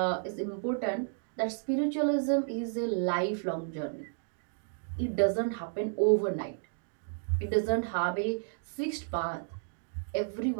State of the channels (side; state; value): left; silent; digital silence